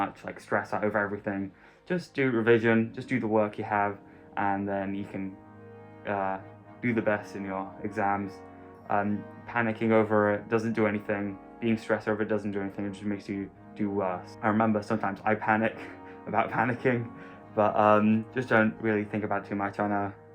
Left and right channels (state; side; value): identical; both; correlation 1.00